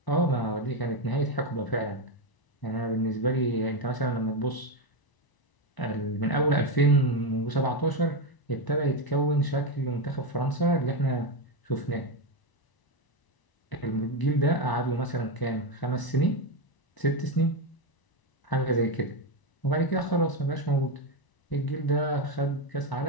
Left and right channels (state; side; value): late; right; 1.0 ms